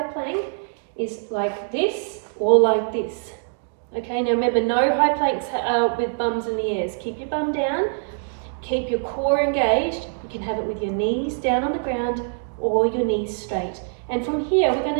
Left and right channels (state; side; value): silent; left; digital silence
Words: plank is like this or like this. Okay, now remember, no high planks with bums in the ears. Keep your bum down, keep your core engaged. You can have it with your knees down on the ground or your knees straight. And from here, we're